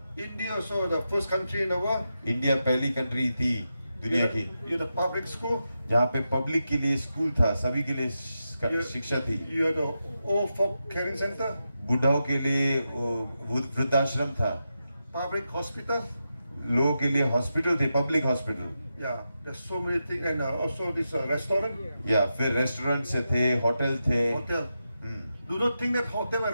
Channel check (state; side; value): inverted; both; correlation -0.88